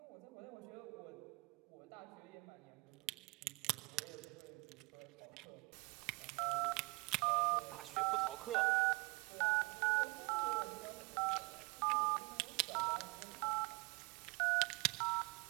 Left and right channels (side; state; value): left; quieter; 27.4 dB